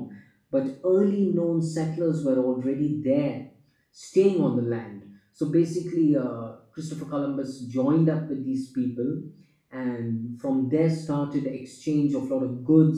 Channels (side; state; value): both; identical; correlation 1.00